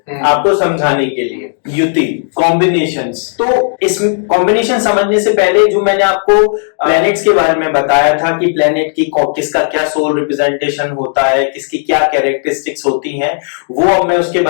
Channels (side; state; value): right; silent; digital silence